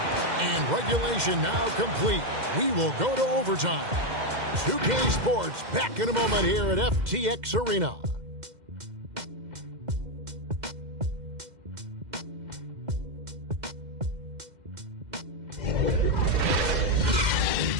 And regulation now complete. We will go to overtime. 2K Sports back in a moment here at FTX Arena.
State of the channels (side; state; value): left; late; 2.1 ms